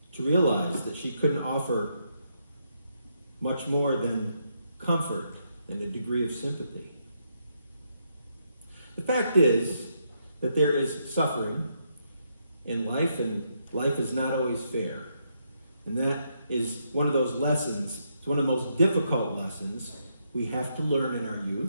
to realize that she couldn't offer much more than comfort and a degree of sympathy. The fact is that there is suffering in life, and life is not always fair. And that is one of those lessons, it's one of the most difficult lessons we have to learn in our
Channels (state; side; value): inverted; both; correlation -0.78